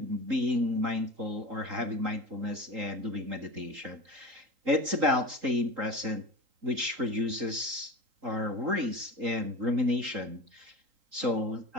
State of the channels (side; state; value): left; late; 3.8 ms